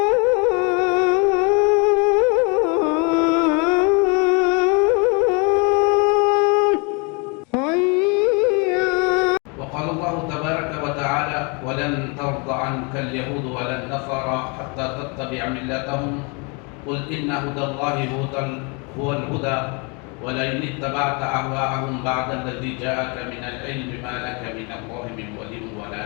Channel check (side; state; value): right; quieter; 32.7 dB